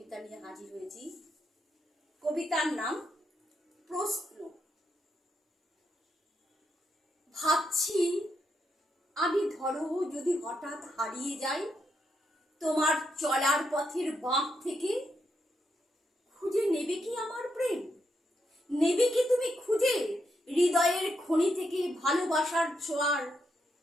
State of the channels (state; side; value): normal; both; correlation 0.81